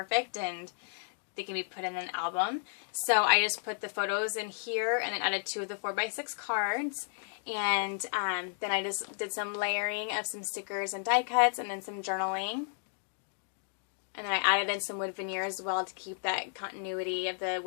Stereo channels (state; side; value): silent; right; digital silence